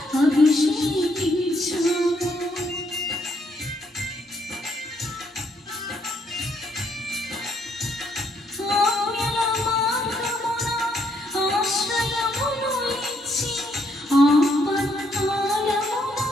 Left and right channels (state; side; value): normal; both; correlation 0.72